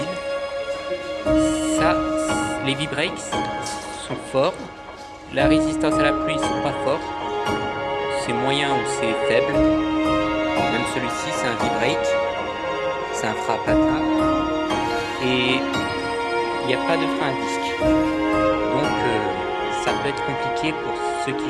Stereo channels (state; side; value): identical; both; correlation 1.00